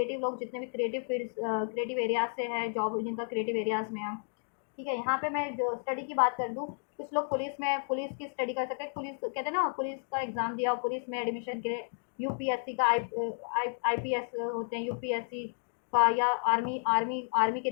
लोग जितने भी क्रिएटिव फील्ड्स, क्रिएटिव एरियाज से है, जॉब जिनका क्रिएटिव एरियाज में है, ठीक है। यहाँ पे मैं जो स्टडी की बात कर दूँ, कुछ लोग पुलिस में, पुलिस की स्टडी कर सकते हैं, पुलिस कहते हैं ना, पुलिस का एग्ज़ाम दिया और पुलिस में एडमिशन के लिए, यूपीएससी का आईपीएस होते हैं, यूपीएससी का, या आर्मी आर्मी आर्मी की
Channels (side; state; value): right; silent; 56 dB below the other